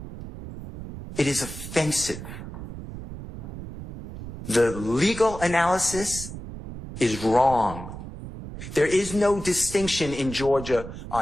It is offensive. The legal analysis is wrong. There is no distinction in Georgia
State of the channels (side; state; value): right; noise; rumble, 11 dB below the sound